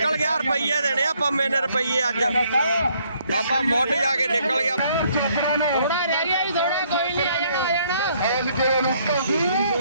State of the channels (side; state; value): both; inverted; correlation -0.67